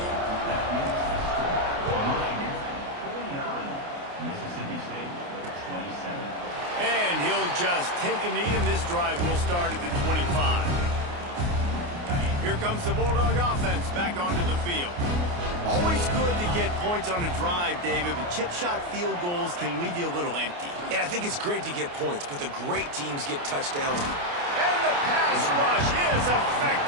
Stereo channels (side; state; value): left; late; 29 ms